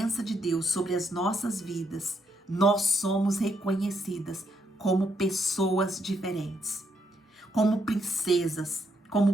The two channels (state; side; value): normal; both; correlation 0.76